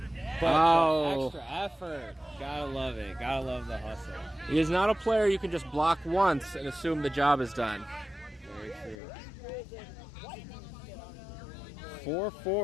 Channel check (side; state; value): right; drops out; at 9.0 s